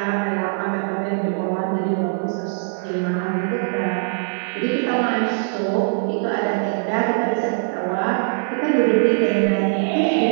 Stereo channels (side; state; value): left; silent; digital silence